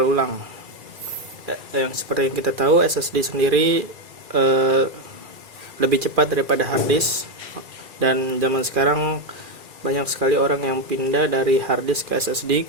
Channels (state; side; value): late; left; 2.4 ms